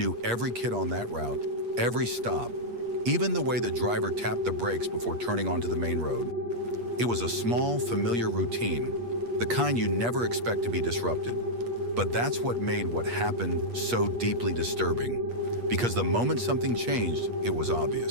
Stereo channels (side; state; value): left; late; 8.4 ms